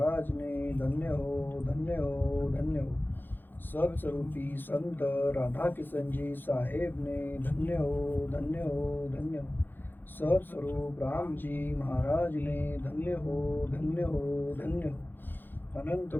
ने धन्य हो, धन्य हो, धन्य हो। सत्स्वरूपी संत राधा किशन जी साहेब ने धन्य हो, धन्य हो, धन्य हो। सत्स्वरूप राम जी महाराज ने धन्य हो, धन्य हो, धन्य हो। अनंत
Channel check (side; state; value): right; late; 0.094 ms